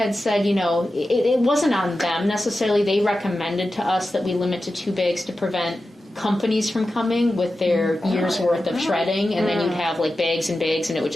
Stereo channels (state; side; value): normal; both; correlation 0.93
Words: said, it wasn't on them necessarily. They recommended to us that we limit to 2 bags to prevent companies from coming with their year's worth of shredding, and then you'd have like bags and bags, and it would